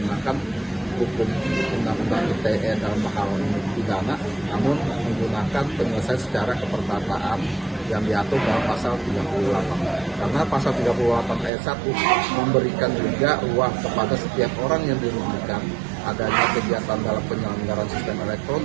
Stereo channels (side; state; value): left; drops out; at 11.5 s